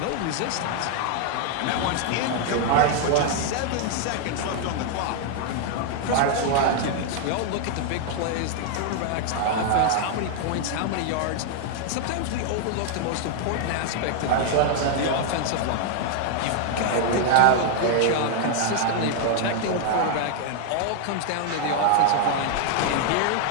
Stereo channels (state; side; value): different; both; correlation 0.00